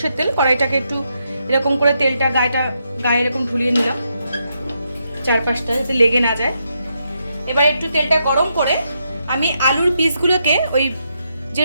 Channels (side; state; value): both; inverted; correlation -0.81